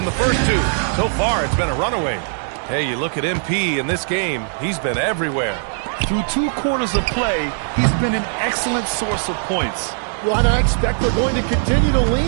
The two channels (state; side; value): silent; left; 66 dB below the other